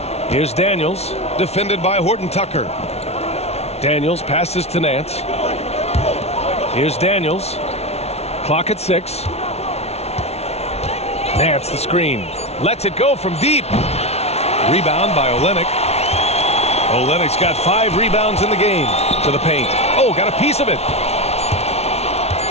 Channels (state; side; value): late; right; 0.31 ms